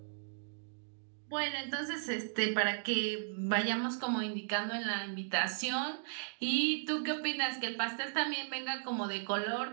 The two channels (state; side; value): silent; left; digital silence